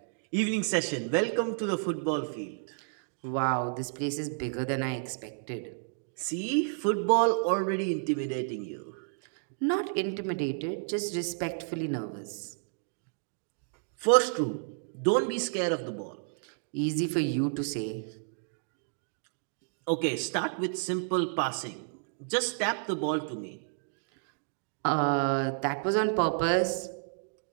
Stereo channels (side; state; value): left; silent; digital silence